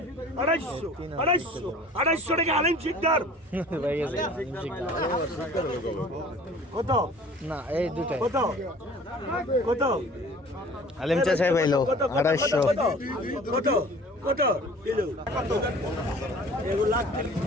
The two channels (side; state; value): both; normal; correlation 0.47